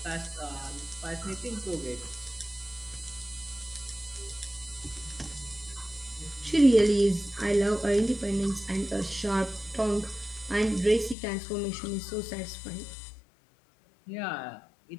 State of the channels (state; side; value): drops out; right; at 11.2 s